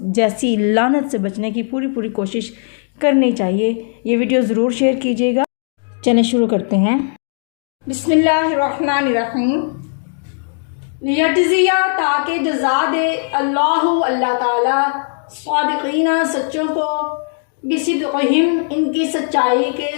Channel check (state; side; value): silent; right; digital silence